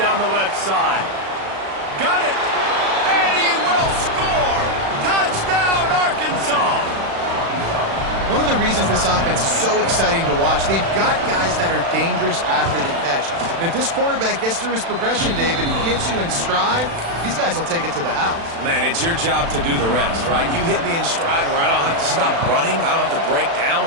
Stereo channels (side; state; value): left; late; 36 ms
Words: the left side. Got it. And he will score. Touchdown, Arkansas. One of the reasons this offense is so exciting to watch, they've got guys that are dangerous after the catch. And if this quarterback gets through his progression, David, he hits you in stride, these guys will take it to the house. Man, it's your job to do the rest, right? You hit me in stride where I don't have to stop running. I don't have to break